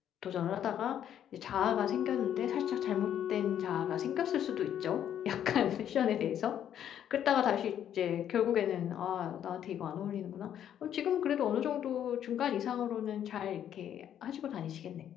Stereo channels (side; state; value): right; quieter; 10.0 dB